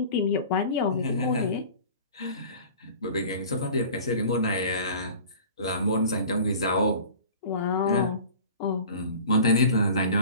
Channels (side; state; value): both; inverted; correlation -0.42